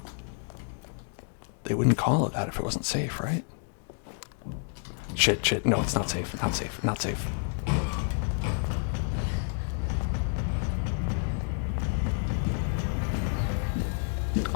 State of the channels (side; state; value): right; silent; 57 dB below the other